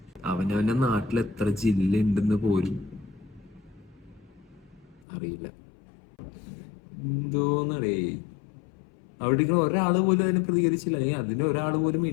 അവനവന്റെ നാട്ടിൽ എത്ര ജില്ല ഉണ്ടെന്ന് പോലും അറിയില്ല. എന്തോന്നടേ, അവിടെ ഒരാള് പോലും അതിനെ പ്രതികരിച്ചില്ല. അതിന് ഒരാള് പോലും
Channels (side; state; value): right; drops out; at 5.1 s